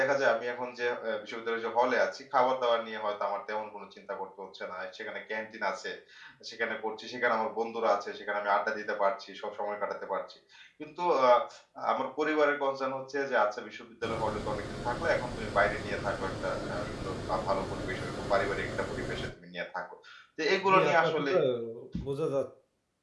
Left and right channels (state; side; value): identical; both; correlation 1.00